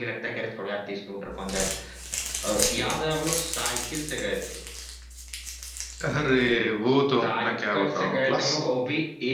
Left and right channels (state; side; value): identical; both; correlation 1.00